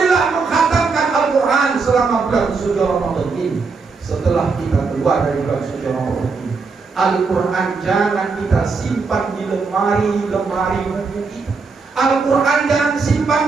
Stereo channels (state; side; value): quieter; left; 4.6 dB